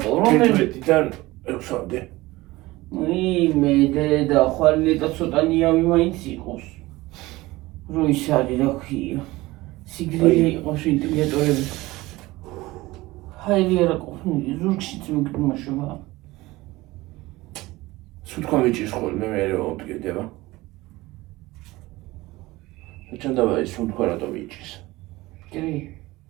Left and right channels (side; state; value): left; quieter; 19.7 dB